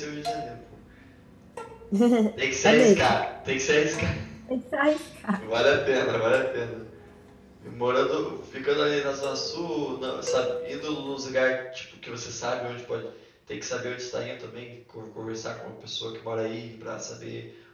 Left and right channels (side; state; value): both; identical; correlation 1.00